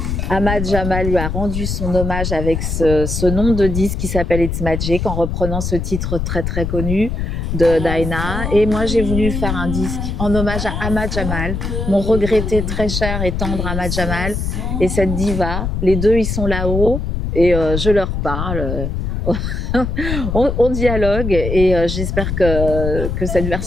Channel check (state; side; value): noise; left; rumble, 3 dB below the sound